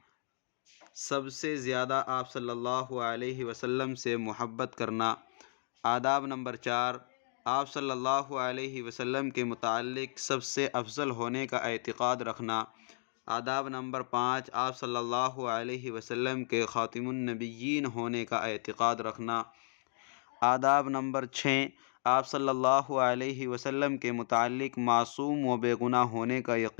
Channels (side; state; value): right; silent; digital silence